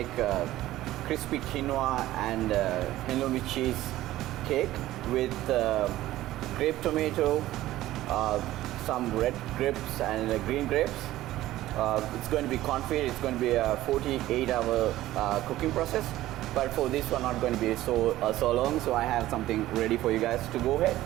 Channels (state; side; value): quieter; left; 15.3 dB